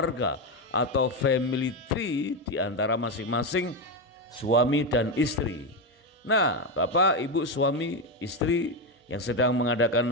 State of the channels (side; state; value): both; normal; correlation 0.10